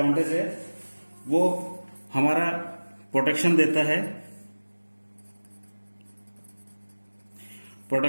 है वो हमारा प्रोटेक्शन देता है,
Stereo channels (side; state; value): both; inverted; correlation -1.00